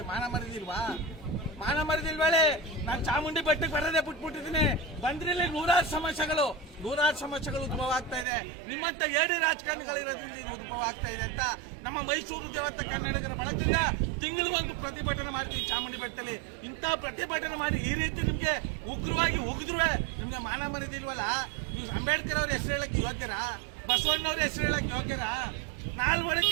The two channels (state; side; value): drops out; left; at 8.2 s